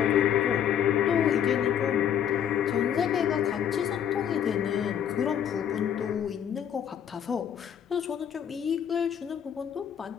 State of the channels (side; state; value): right; quieter; 9.1 dB